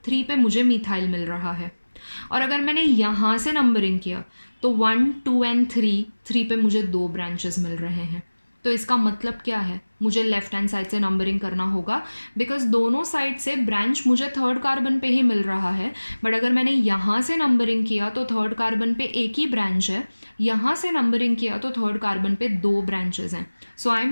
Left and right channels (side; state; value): both; inverted; correlation -1.00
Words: पे मुझे मिथाइल मिल रहा है, और अगर मैंने यहाँ से नंबरिंग किया तो 1 2 and 3 पे मुझे 2 ब्रांचेस मिल रहे हैं. तो इसका मतलब क्या है? मुझे लेफ्ट हैंड साइड से नंबरिंग करना होगा, बिकॉज दोनों साइड से ब्रांच मुझे 3rd कार्बन पे ही मिल रहा है. बट अगर मैंने यहाँ से नंबरिंग किया तो 3rd कार्बन पे एक ही ब्रांच है, यहाँ से नंबरिंग किया तो 3rd कार्बन पे 2 ब्रांचेस हैं. So I